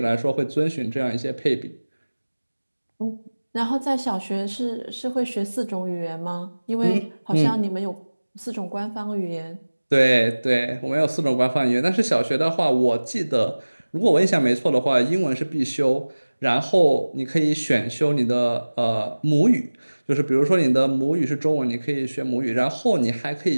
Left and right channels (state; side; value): inverted; both; correlation -1.00